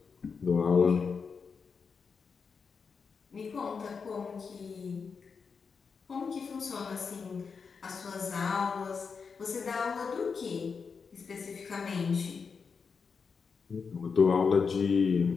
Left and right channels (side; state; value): right; quieter; 5.5 dB